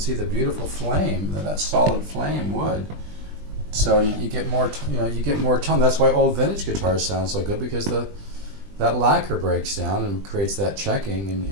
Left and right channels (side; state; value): left; late; 20 ms